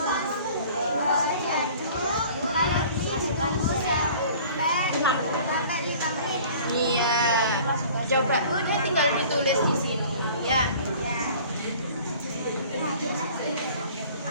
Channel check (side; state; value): both; inverted; correlation -0.48